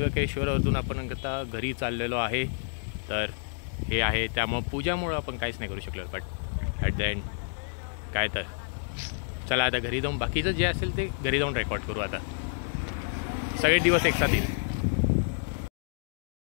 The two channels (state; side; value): silent; right; digital silence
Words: आपण आता घरी चाललेलो आहे. तर हे आहे, त्यामुळं पूजामुळं आपण काहीच नाही करू शकलो, बट ॲट द एंड काय तर चला आता घरी जाऊन बाकीचं जे असेल ते घरी जाऊन रेकॉर्ड करू. आता सगळे दिवस एक साथ येईल.